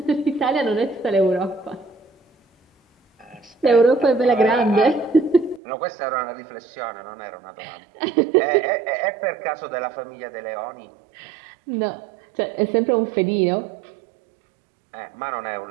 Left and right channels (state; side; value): drops out; left; at 5.6 s